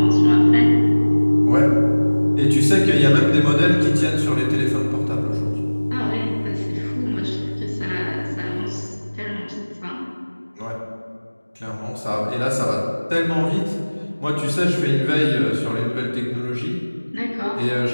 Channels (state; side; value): inverted; both; correlation -1.00